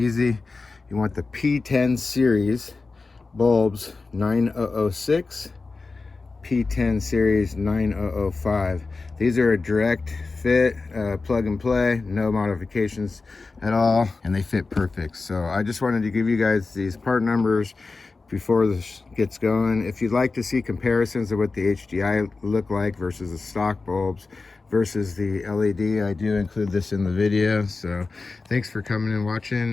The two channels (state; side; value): quieter; right; 3.9 dB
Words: You want the P10 series bulbs 9006, P10 series 9005. These are a direct fit, plug and play, no modifications at all, and they fit perfect. So I just wanted to give you guys these part numbers before this gets going. If you'd like to see comparisons of what the HDI look like versus the stock bulbs versus the LED, I do include this in the video. So thanks for coming and